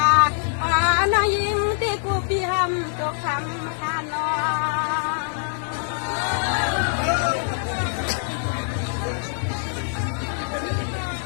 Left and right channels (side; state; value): right; silent; 63 dB below the other